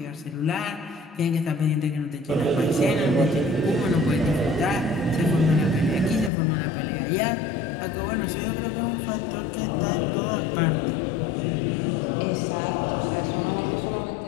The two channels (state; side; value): drops out; right; at 6.3 s